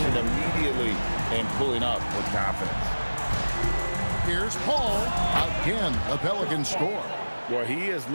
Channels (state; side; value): inverted; both; correlation -1.00